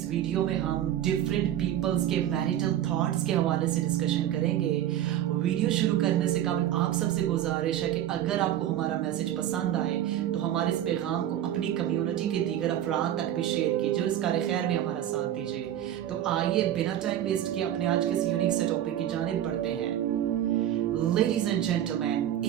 वीडियो में हम डिफरेंट पीपल्स के मैरिटल थॉट्स के हवाले से डिस्कशन करेंगे। वीडियो शुरू करने से कबल आप सबसे गुजारिश है कि अगर आपको हमारा मैसेज पसंद आए तो हमारे इस पैगाम को अपनी कम्युनिटी के दीगर अफराद तक भी शेयर कीजिए और इस कार खैर में हमारा साथ दीजिए। तो आइए बिना टाइम वेस्ट किए अपने आज के इस यूनिक से टॉपिक की जानिब बढ़ते हैं। Ladies and gentlemen,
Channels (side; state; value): left; quieter; 11.6 dB